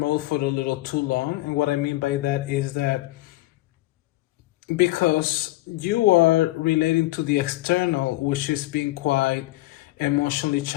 for a little too long. And what I mean by that is that because you are relating to the external, which is being quite emotionally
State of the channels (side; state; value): right; quieter; 18.3 dB